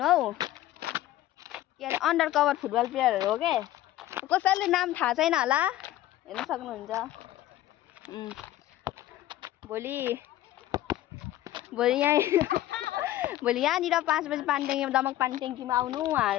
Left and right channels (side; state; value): right; quieter; 14.2 dB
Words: हौ, के अरे अन्डर कभर फुटबल प्लेयरहरु हो के। कसैले नाम थाहा छैन होला, हेर्न सक्नुहुन्छ। भोलि यहाँनिर 5 बजे पानीट्याङ्कीमा दमक पानीट्याङ्कीमा आउनु